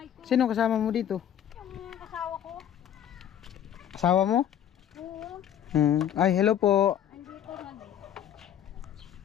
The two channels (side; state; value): right; quieter; 10.1 dB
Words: ko. Sino kasama mo dito? Yung asawa ko. Asawa mo? Oo. Ay, hello po. Andito